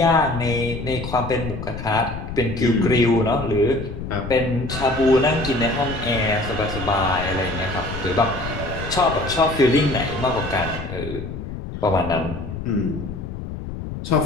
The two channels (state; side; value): noise; left; rumble, 8 dB below the sound